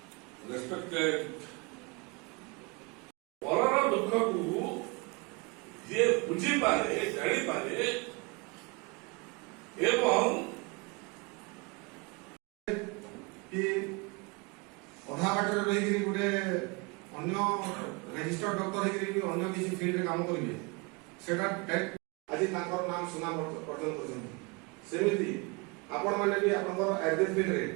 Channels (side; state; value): left; quieter; 29.1 dB